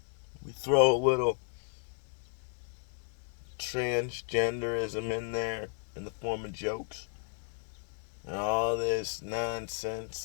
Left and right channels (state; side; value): silent; right; digital silence